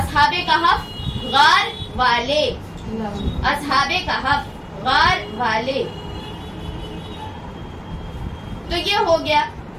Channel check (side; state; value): both; identical; correlation 1.00